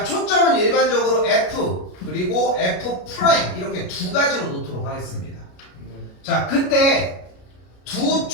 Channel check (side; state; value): right; late; 33 ms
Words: 초점은 일반적으로 F 그리고 F 프라임 이렇게 두 가지로 놓도록 하겠습니다. 네. 자, 근데 두